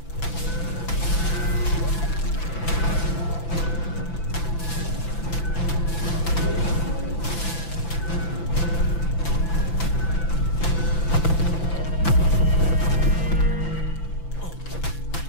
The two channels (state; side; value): late; right; 5.9 ms